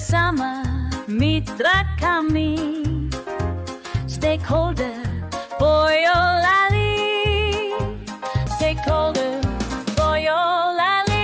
mitra kami stakeholder Boyolali, stakeholder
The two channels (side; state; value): both; identical; correlation 1.00